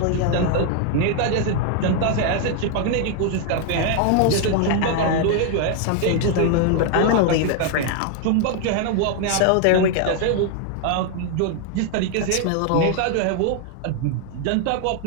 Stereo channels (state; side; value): different; both; correlation 0.00